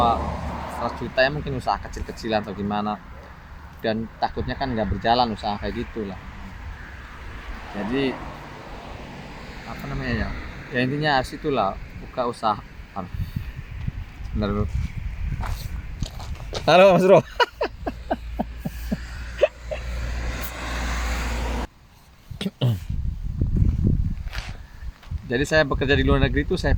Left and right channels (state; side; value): identical; both; correlation 1.00